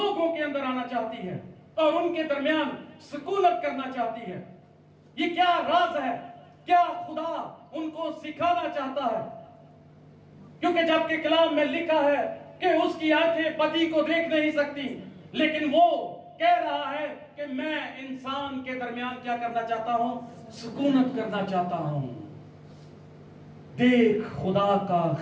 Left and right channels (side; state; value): both; identical; correlation 1.00